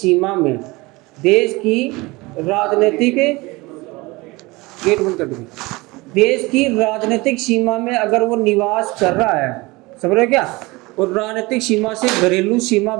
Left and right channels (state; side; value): quieter; left; 23.0 dB